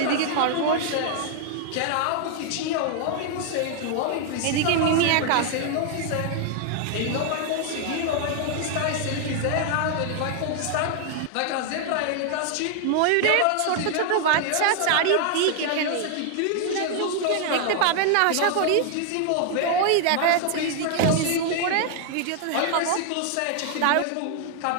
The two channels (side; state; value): both; different; correlation 0.00